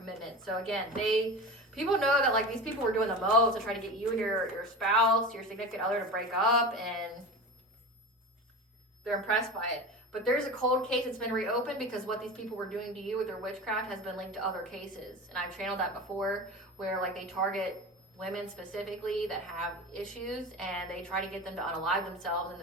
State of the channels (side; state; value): both; normal; correlation 0.29